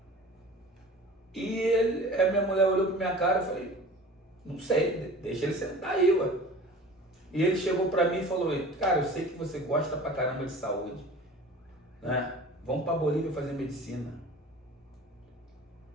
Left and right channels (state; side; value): normal; both; correlation 0.41